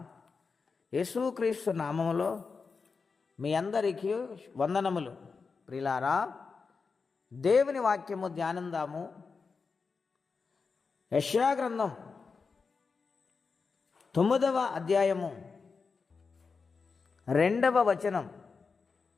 యేసుక్రీస్తు నామములో మీ అందరికీ వందనములు. ప్రియులారా, దేవుని వాక్యము ధ్యానందాము. యెషయా గ్రంథం 9వ అధ్యాయము 2వ వచనం.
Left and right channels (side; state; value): right; quieter; 4.9 dB